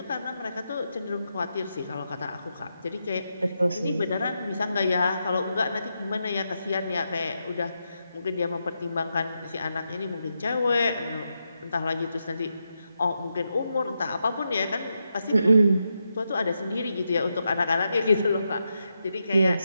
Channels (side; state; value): both; inverted; correlation -0.85